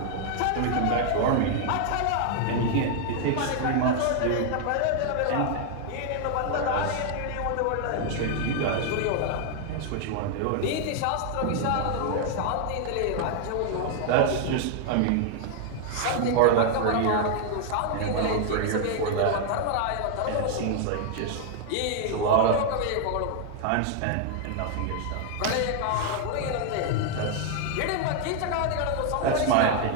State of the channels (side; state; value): both; different; correlation 0.00